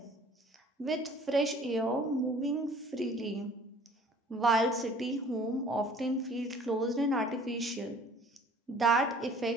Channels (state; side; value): normal; both; correlation 0.52